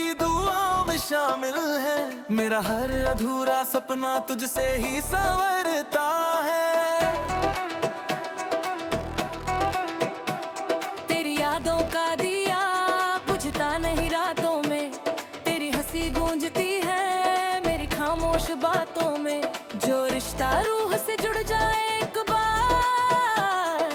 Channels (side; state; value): both; identical; correlation 1.00